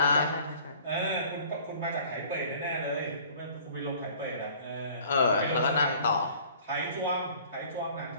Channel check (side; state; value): both; inverted; correlation -0.50